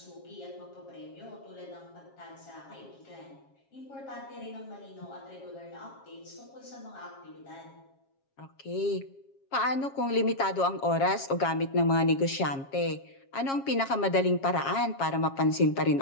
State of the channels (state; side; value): late; right; 7.3 ms